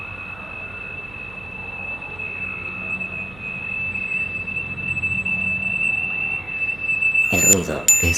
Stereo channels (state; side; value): noise; right; hum, 19 dB below the sound